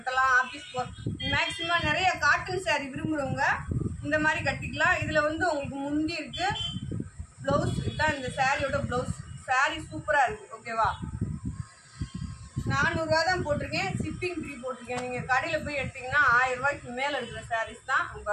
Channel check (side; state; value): both; identical; correlation 1.00